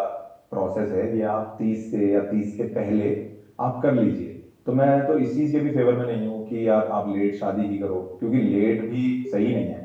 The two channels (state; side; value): identical; both; correlation 1.00